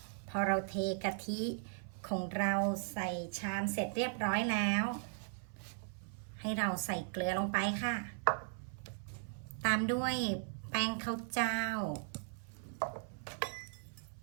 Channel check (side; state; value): left; silent; 53 dB below the other